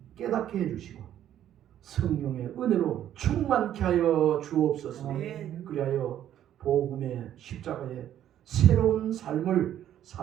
깨닫게 해주시고 성령의 은혜로 충만케 하여 주옵소서. 아멘. 그리하여 복음의 십자가의 새로운 삶을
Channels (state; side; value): quieter; left; 11.2 dB